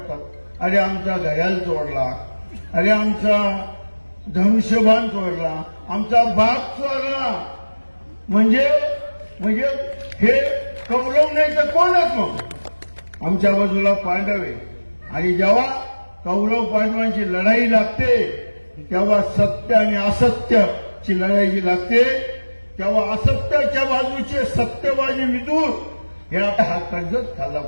अरे आमचा घड्याळ चोरला, अरे आमचा धनुष्यबाण चोरला, आमचा बाग चोरला. म्हणजे हे कौरव नाही तर कोणच मग आमच्या बाजूला पांडव आहे. आणि जेव्हा कौरव पांडवांची लढाई लागते तेव्हा सत्य आणि असत्याची लढाई जी लागते तेव्हा असत्याच्या बाजूचे सत्यबाजी विदूर हे हा कर्जत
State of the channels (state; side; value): inverted; both; correlation -1.00